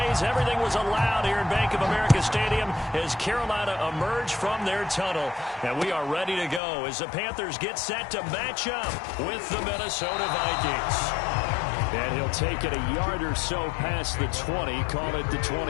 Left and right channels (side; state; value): right; drops out; at 6.6 s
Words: Everything was allowed here in Bank of America Stadium as Carolina emerged from their tunnel. And we are ready to go as the Panthers get set to match up with the Minnesota Vikings. And he'll take it a yard or so past the 20, call it the